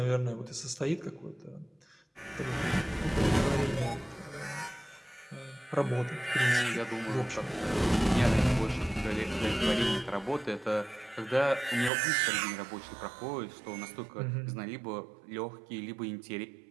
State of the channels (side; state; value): left; drops out; at 11.9 s